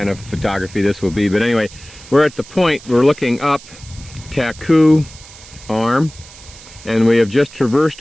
of photography this will be, but anyway, we're at the point, we're looking up Chilkoot Arm, and we have just traversed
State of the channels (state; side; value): noise; right; hiss, 19 dB below the sound